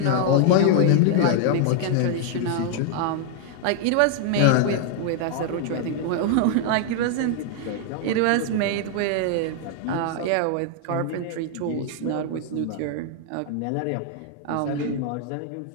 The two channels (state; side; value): different; both; correlation 0.00